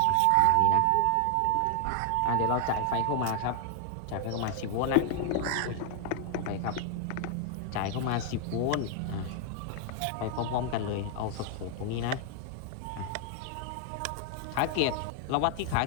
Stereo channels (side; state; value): both; different; correlation 0.00